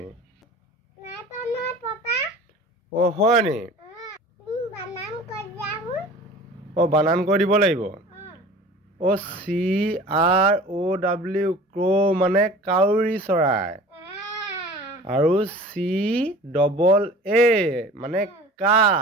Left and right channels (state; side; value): normal; both; correlation 0.42